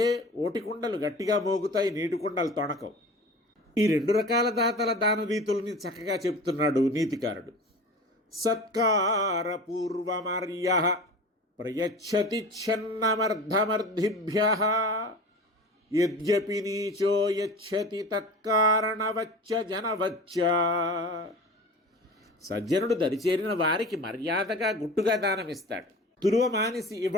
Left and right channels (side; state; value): both; normal; correlation 0.36